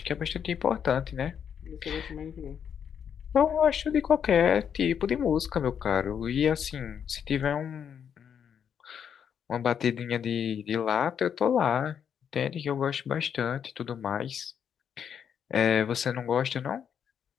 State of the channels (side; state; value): right; quieter; 8.0 dB